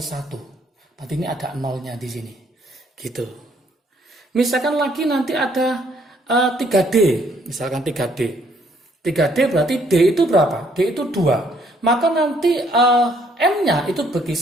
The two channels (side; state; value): both; normal; correlation 0.66